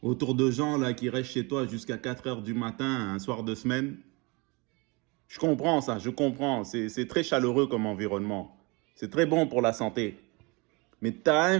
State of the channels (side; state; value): left; quieter; 28.0 dB